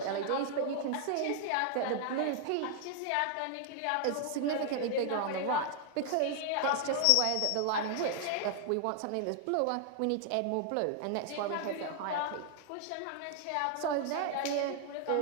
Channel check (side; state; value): both; different; correlation 0.00